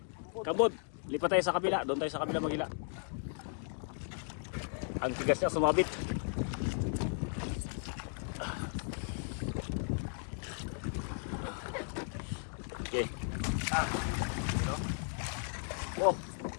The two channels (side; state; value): right; silent; 54 dB below the other